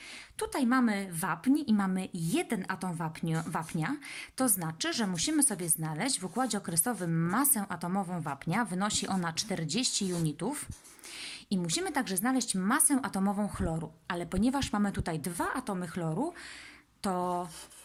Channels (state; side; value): identical; both; correlation 1.00